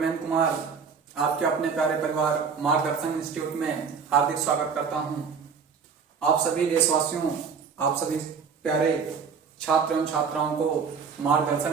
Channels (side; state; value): left; quieter; 6.0 dB